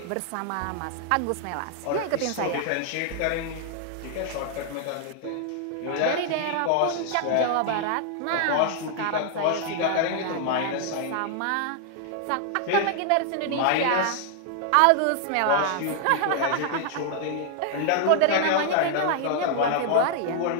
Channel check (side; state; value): both; different; correlation 0.00